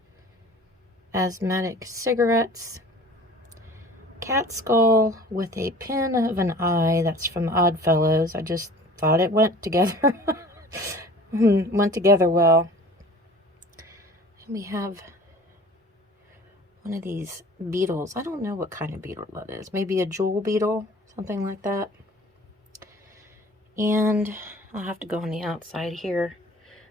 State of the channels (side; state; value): both; normal; correlation 0.45